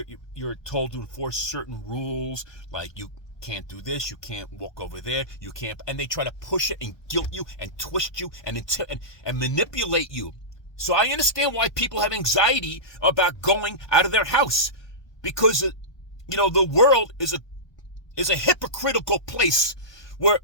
you're told to enforce certain rules, like you can't do this, you can't walk over there, you can't, and they try to push it and guilt you and twist you and manipulate you. So I understand why people have anxiety about going out of their house, because the world is a hypocritical place where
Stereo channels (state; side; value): late; right; 1.2 ms